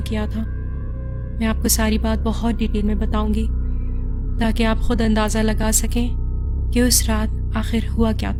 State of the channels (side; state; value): both; identical; correlation 1.00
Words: किया था। मैं आपको सारी बात बहुत डिटेल में बताऊंगी ताकि आप खुद अंदाज़ा लगा सकें कि उस रात आखिर हुआ क्या